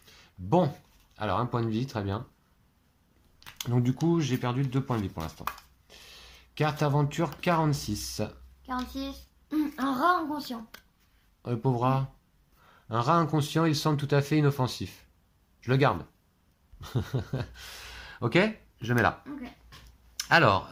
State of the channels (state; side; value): identical; both; correlation 1.00